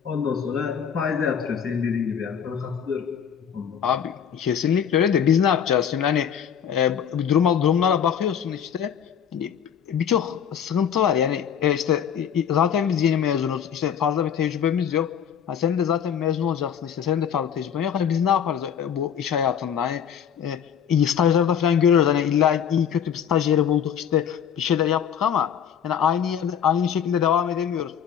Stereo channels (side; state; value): right; quieter; 8.3 dB